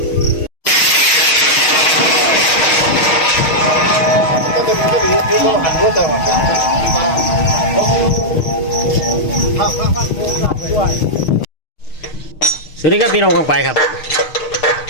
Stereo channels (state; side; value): late; right; 6.5 ms